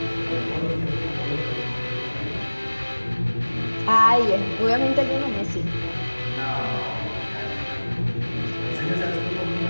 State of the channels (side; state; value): both; inverted; correlation -1.00